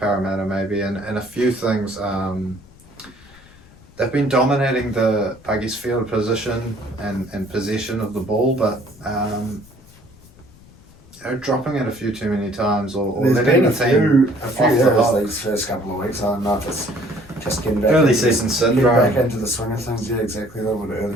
maybe, and a few things. They've been dominating the, I guess, field position and possession of the ball, but dropping it a few too many times, or letting the team a few errors these first couple of weeks. I don't know if it's just getting back early season syndrome. Getting back into the swing of things. Yeah, exactly. A little bit of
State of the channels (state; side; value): noise; left; rumble, 25 dB below the sound